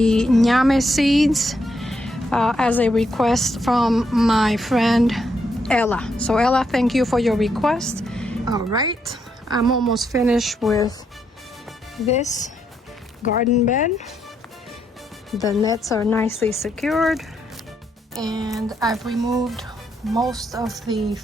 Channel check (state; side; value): normal; both; correlation 0.77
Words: Ñame seeds as a request from my friend Ella. So Ella, thank you for your request. All right, I'm almost finished with this garden bed. The nets are nicely secured, and I've removed most of the